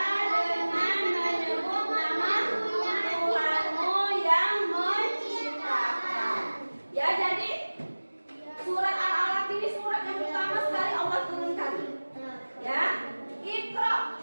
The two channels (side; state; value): both; inverted; correlation -1.00